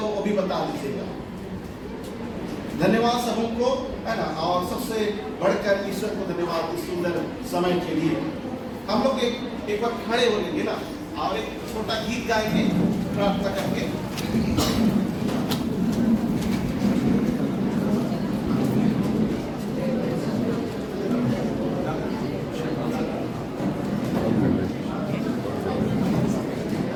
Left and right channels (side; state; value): both; identical; correlation 1.00